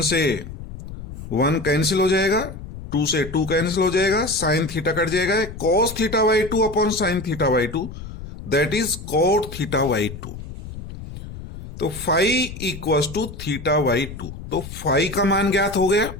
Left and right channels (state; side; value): noise; left; rumble, 12 dB below the sound